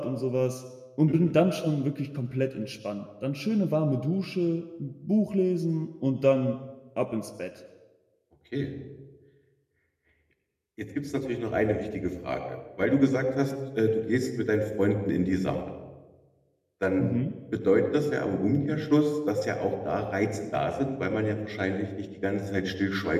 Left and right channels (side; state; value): both; identical; correlation 1.00